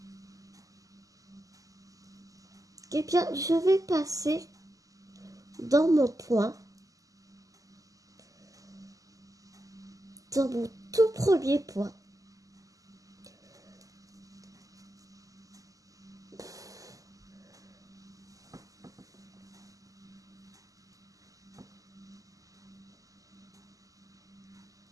Eh bien, je vais passer dans mon point, dans mon tout premier point.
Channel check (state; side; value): late; left; 0.17 ms